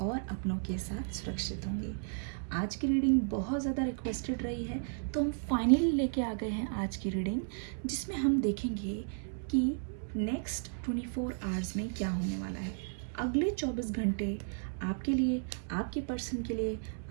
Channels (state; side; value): silent; left; 55 dB below the other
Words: अपनों के साथ सुरक्षित होंगे। आज की रीडिंग बहुत ज़्यादा रिक्वेस्टेड रही है, तो हम फाइनली लेके आ गए हैं आज की रीडिंग, जिसमें हम देखेंगे कि नेक्स्ट 24 आवर्स में क्या होने वाला है। अगले 24 घंटे आपके लिए, आपके पर्सन के लिए,